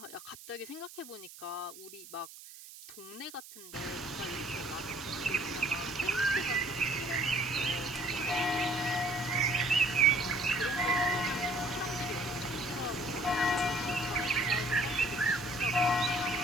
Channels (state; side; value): noise; right; hiss, 16 dB below the sound